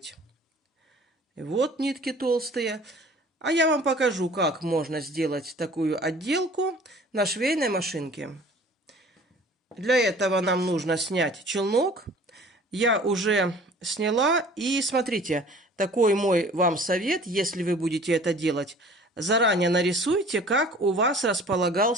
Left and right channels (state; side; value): normal; both; correlation 0.48